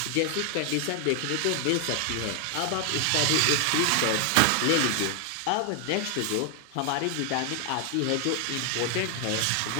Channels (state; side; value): different; both; correlation 0.00